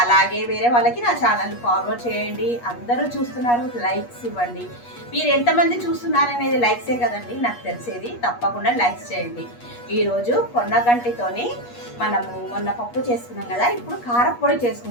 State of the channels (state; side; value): late; right; 8.3 ms